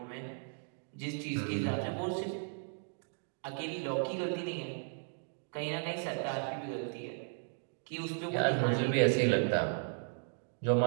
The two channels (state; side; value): silent; left; 54 dB below the other